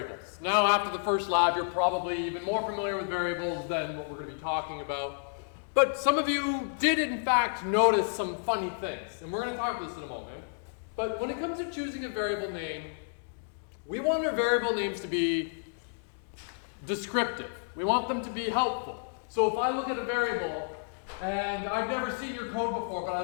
Now after the first lab, you're probably even more familiar with variables than what we're going to be talking about. But some of you did in fact notice some funny things, and we're going to talk about this in a moment. But when it comes to choosing a variable name, we want our variable names to be descriptive. We want them to be helpful. So if I look at a variable, and I've never seen your code before, but I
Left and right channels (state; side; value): silent; right; digital silence